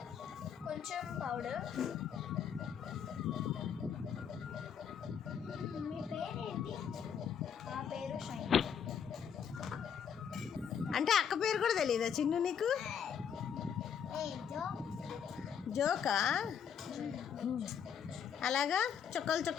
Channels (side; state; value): right; quieter; 7.8 dB